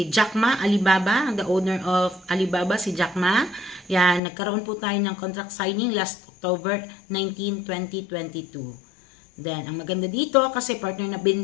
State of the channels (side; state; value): right; drops out; at 4.2 s